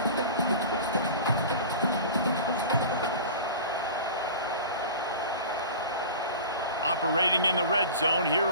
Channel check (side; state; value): both; inverted; correlation -0.35